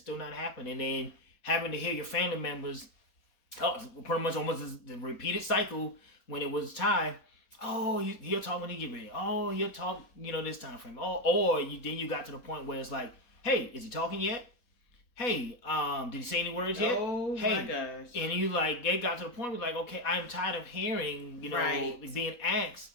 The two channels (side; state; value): right; late; 4.1 ms